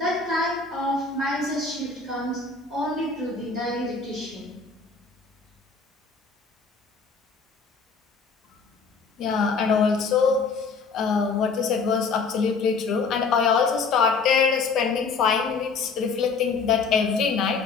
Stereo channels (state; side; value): quieter; right; 4.7 dB